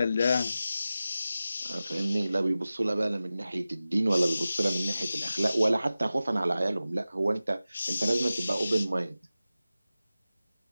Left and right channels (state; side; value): inverted; both; correlation -0.95